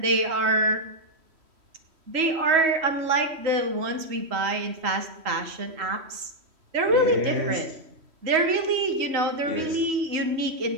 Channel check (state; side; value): late; left; 3.1 ms